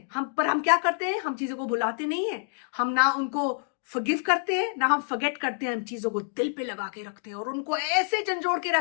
हम क्या करते हैं? हम चीजों को भुलाते नहीं हैं, हम ना उनको फॉरगिव करते हैं ना हम फॉरगेट करते हैं, हम चीजों को दिल पे लगा के रखते हैं और उनको ऐसे झंझोड़ के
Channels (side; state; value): right; silent; 59 dB below the other